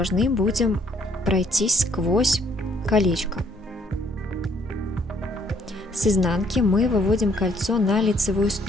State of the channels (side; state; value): both; normal; correlation 0.65